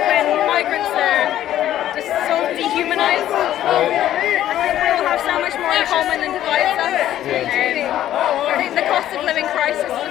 when migrants are just so dehumanised. I think we all have so much more in common than divides us. I think the cost of living crisis is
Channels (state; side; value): quieter; right; 12.3 dB